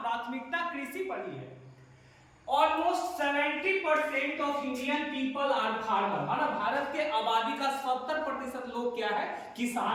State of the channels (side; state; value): both; identical; correlation 1.00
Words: प्राथमिकता कृषि पर ही है। Almost 70% of Indian people are farmer, है ना, भारत के आबादी का 70% लोग क्या है,